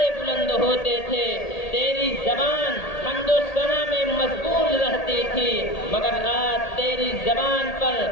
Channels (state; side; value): late; right; 1.8 ms